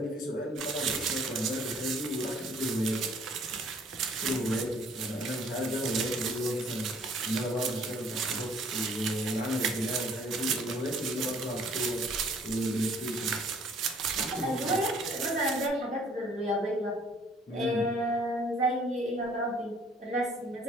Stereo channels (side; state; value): both; normal; correlation 0.58